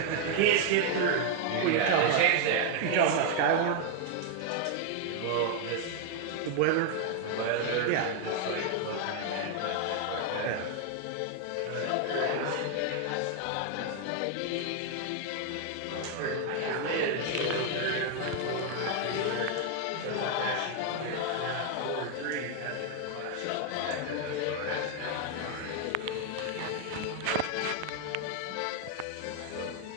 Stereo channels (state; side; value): different; both; correlation 0.00